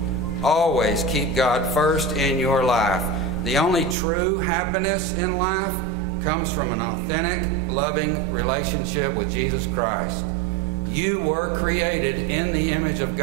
Always keep God first in your life. The only true happiness in life comes from an authentic, loving relationship with Jesus Christ. You were created in the image of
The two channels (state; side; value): drops out; left; at 4.0 s